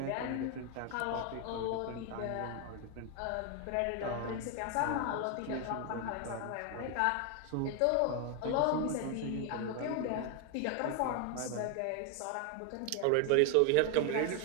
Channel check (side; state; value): both; different; correlation 0.01